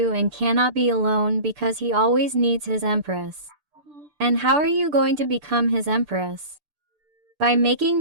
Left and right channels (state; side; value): late; left; 6.8 ms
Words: and cannot be alone because he always needs his empress. And how are you going to become his empress? By making